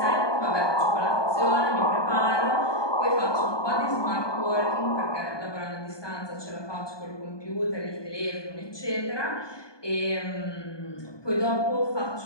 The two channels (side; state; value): right; late; 1.2 ms